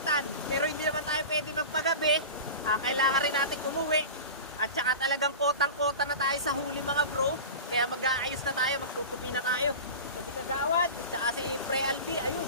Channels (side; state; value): both; inverted; correlation -0.31